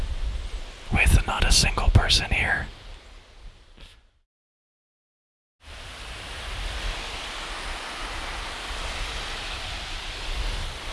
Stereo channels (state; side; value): identical; both; correlation 1.00